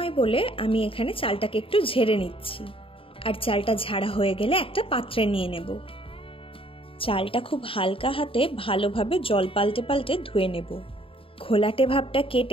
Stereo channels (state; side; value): late; right; 0.26 ms